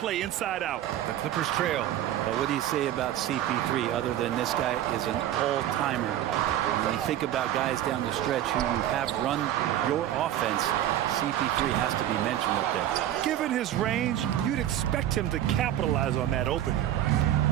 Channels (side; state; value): left; quieter; 12.1 dB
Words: inside out. The Clippers trail. But what do you say about CP3 other than this guy is an all-timer? When you think about guys down the stretch who you have run your offense, CP3 has to be mentioned up there. Given his range, you'd expect him to capitalize on that opening.